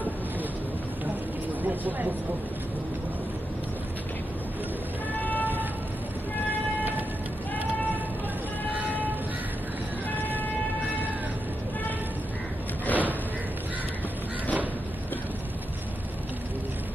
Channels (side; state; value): both; normal; correlation 0.86